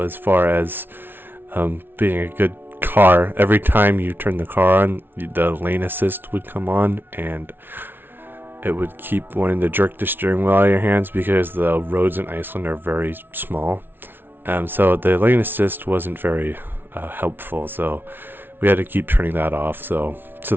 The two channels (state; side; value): late; left; 0.10 ms